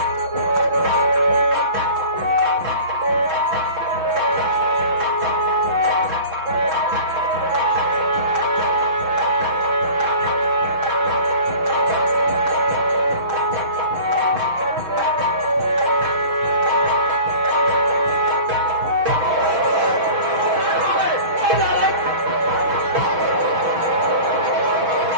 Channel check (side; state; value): left; late; 6.2 ms